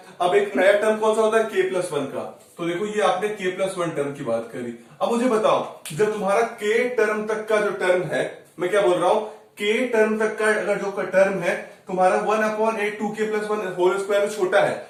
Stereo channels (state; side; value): identical; both; correlation 1.00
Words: अब एक नया टर्म कौन सा होता है, k+1 का। तो देखो ये आपने k+1 टर्म की बात करी। अब मुझे बताओ जब तुम्हारा k टर्म तक का जो टर्म है, मैं क्या बोल रहा हूं, k टर्म तक का अगर जो टर्म है तुम्हारा 1/8 2k+1 होल स्क्वायर छोटा है,